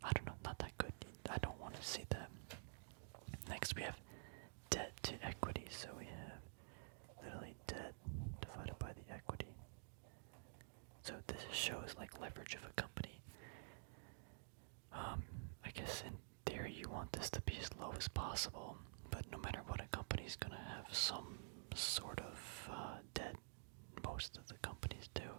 I don't know, not that good. I don't want to see that. Next, we have debt to equity. So we have literally debt divided by the equity. So this shows like leverage of a company. I guess in theory you want this to be as low as possible, but no matter what, a company's gonna have some sort of debt. Most of the companies do.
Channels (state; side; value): silent; left; digital silence